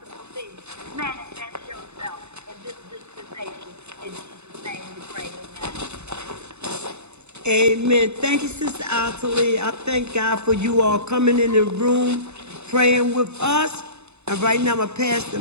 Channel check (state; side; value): late; left; 0.81 ms